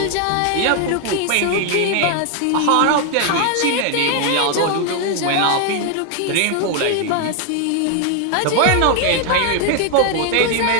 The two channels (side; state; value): both; different; correlation 0.00